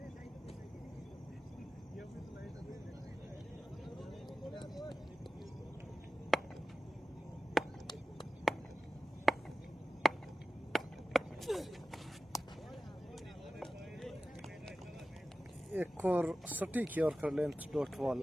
एक और सटीक यॉर्कर लेंथ डॉट बॉल,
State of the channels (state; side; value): normal; both; correlation 0.96